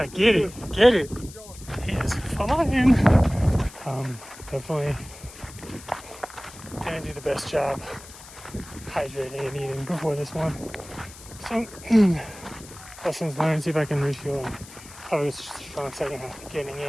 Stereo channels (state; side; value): noise; left; hiss, 18 dB below the sound